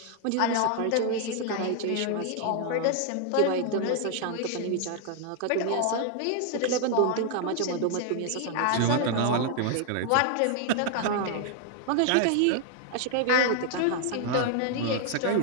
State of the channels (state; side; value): different; both; correlation 0.00